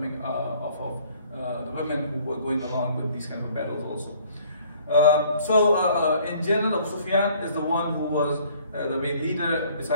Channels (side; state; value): both; inverted; correlation -0.57